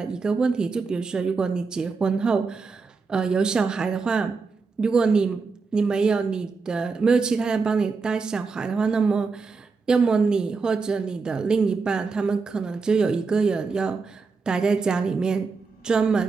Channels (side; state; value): left; quieter; 4.6 dB